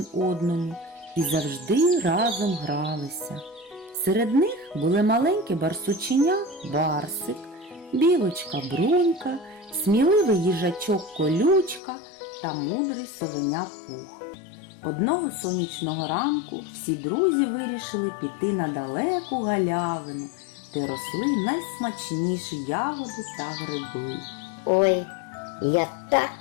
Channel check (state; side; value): drops out; right; at 11.8 s